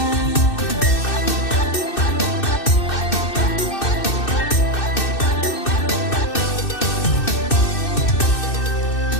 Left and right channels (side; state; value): right; late; 2.6 ms